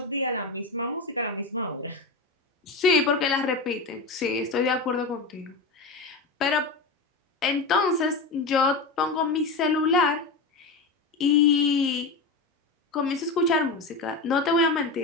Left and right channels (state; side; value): quieter; right; 3.8 dB